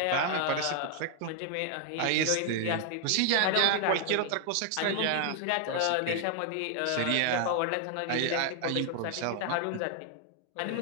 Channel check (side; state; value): both; different; correlation 0.00